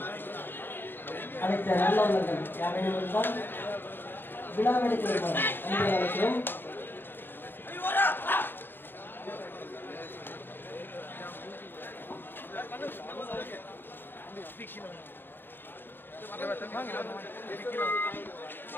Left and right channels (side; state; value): right; late; 0.10 ms